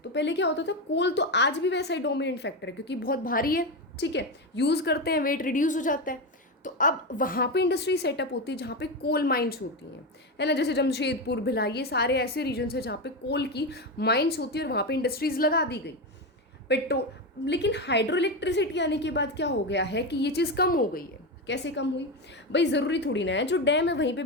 पहले क्या होता था, कोल तो आज भी वैसा ही डोमिनेंट फैक्टर है क्योंकि बहुत भारी है। ठीक है, यूज़ करते हैं, वेट रिड्यूस हो जाता है। तो अब वहाँ पे इंडस्ट्री सेटअप होती है जहाँ पे कोल माइंस होती हैं, है ना। जैसे जमशेदपुर, भिलाई, ये सारे ऐसे रीजन्स हैं जहाँ पे कोल की माइंस होती है और वहाँ पे इंडस्ट्रीज लगा दी गई। पेट्रोल, लेकिन हाइड्रो इलेक्ट्रिसिटी आने के बाद क्या हो गया है कि ये चीज़ कम हो गई है। कैसे कम हुई, भाई ज़रूरी थोड़ी ना है जो डैम है वहीं पे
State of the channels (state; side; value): normal; both; correlation 0.14